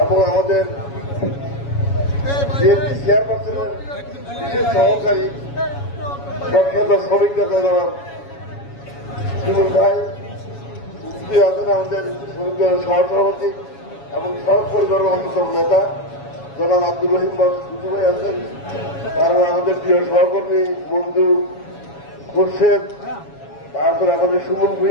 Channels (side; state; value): right; late; 7.2 ms